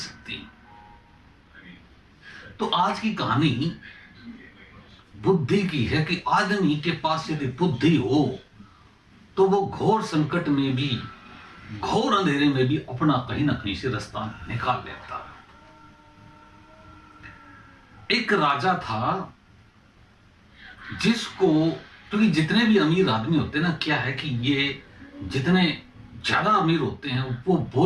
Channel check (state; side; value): identical; both; correlation 1.00